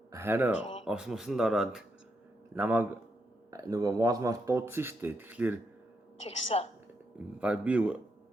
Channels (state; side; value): normal; both; correlation 0.81